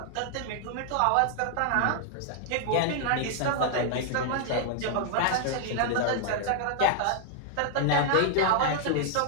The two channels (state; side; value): different; both; correlation 0.00